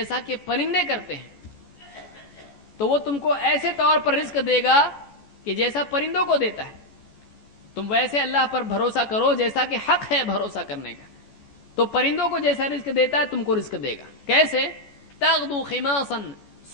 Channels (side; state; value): right; late; 14 ms